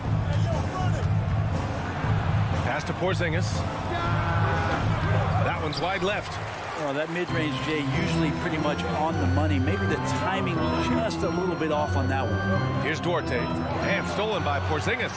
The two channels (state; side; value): identical; both; correlation 1.00